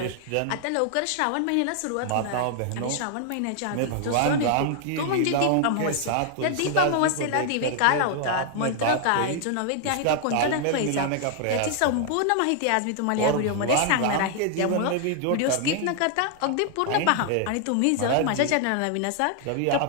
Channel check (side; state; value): both; different; correlation 0.00